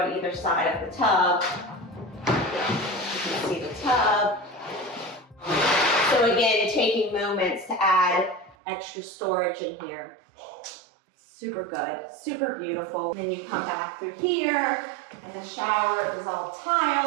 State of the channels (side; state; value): left; drops out; at 8.6 s